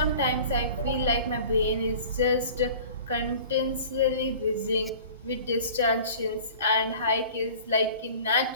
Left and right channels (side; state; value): both; inverted; correlation -0.44